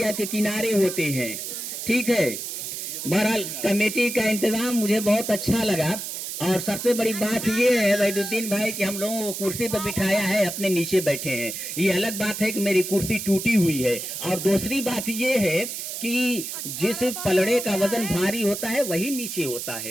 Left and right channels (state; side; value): noise; right; hiss, 6 dB below the sound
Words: के किनारे होते हैं, ठीक है। बहरहाल कमेटी का इंतजाम मुझे बहुत अच्छा लगा। और सबसे बड़ी बात ये है वहीदुद्दीन भाई कि हम लोगों को कुर्सी पर बिठाया है, अपने नीचे बैठे हैं। ये अलग बात है कि मेरी कुर्सी टूटी हुई है, और दूसरी बात ये है कि जिस पलड़े का वजन भारी होता है वही नीचे होता